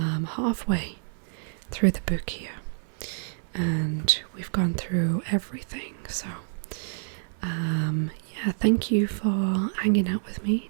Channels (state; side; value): silent; left; 60 dB below the other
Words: halfway through the book here. And we've gone through everything, so yeah, thank you for hanging out with me